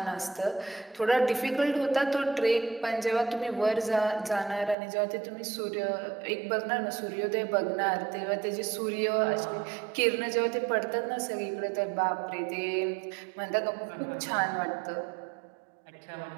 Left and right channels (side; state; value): left; drops out; at 4.8 s